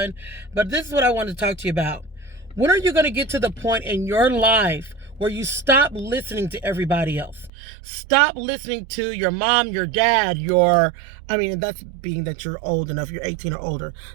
But this is what I want to talk to you about. When are you going to get to the point in your life where you stop listening to everybody else? Stop listening to your mom, your dad, that's being that you're old enough, you're 18 or older.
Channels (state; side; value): drops out; left; at 7.5 s